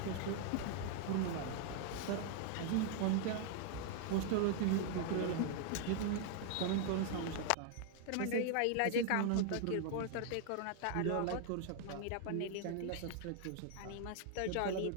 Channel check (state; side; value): different; both; correlation 0.00